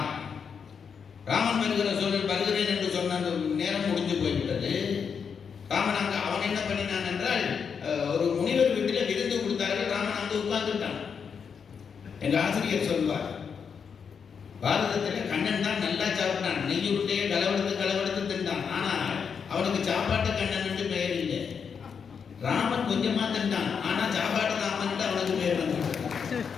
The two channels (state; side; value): quieter; right; 6.5 dB